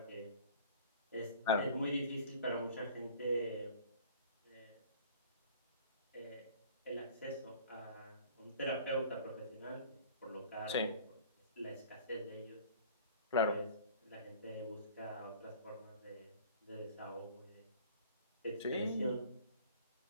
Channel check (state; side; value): inverted; both; correlation -0.46